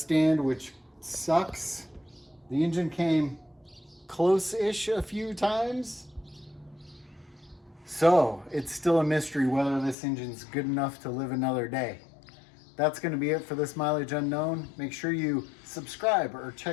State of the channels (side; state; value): right; drops out; at 10.0 s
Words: which sucks. The engine came close-ish a few times. So it's still a mystery whether this engine's good enough to live another day. That's gonna be it for this Mileage Unknown. Make sure you subscribe or